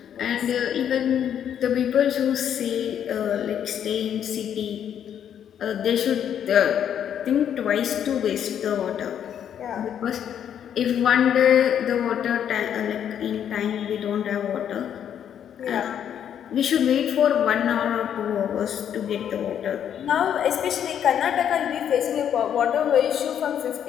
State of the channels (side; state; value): right; quieter; 9.2 dB